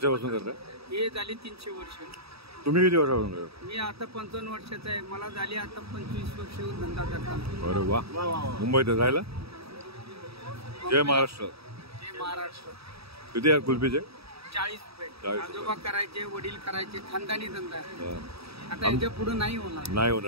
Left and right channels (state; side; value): late; left; 0.77 ms